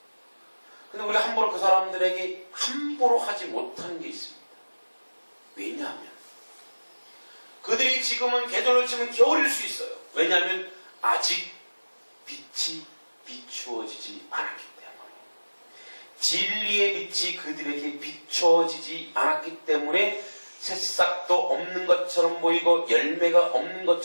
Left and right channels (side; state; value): both; inverted; correlation -1.00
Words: 근데 우리가 함부로 그 사람들에게 함부로 하지 못하는 게 있습니다. 왜냐하면 그들이 지금은 계절로 치면 겨울일 수 있어요. 왜냐하면 아직 빛이 비추어지지 않았기 때문에. 진리의 빛이 그들에게 비춰지지 않았기 때문에 새싹도 없는 것처럼 보이고 열매가 없는